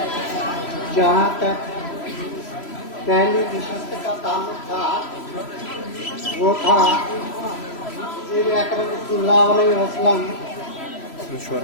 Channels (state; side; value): late; right; 3.0 ms